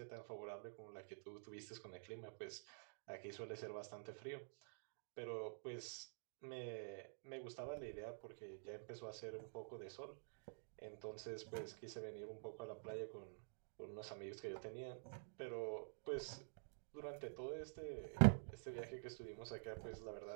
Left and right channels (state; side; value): silent; left; digital silence